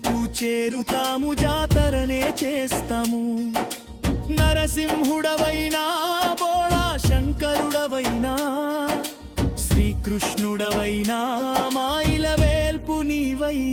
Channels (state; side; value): identical; both; correlation 1.00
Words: చేరుతాము, జాతరనే చేస్తాము. నరసింహుడవైనా బోళా శంకరుడవైనా, శ్రీకృష్ణుడవైనా మాయిల వేల్పు